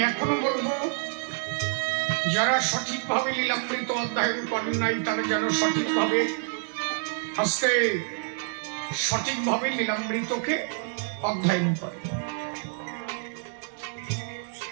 এখনো বলবো, যারা সঠিকভাবে লীলামৃত অধ্যয়ন করেন নাই তারা যেন সঠিকভাবে আজকে সঠিকভাবে লীলামৃতকে অধ্যয়ন করে।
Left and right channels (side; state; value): left; silent; 60 dB below the other